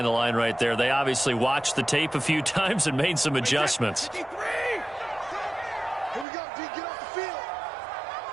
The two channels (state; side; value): drops out; left; at 6.2 s